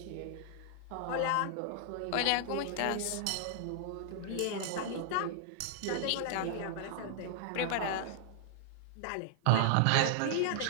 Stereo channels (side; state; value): both; different; correlation -0.01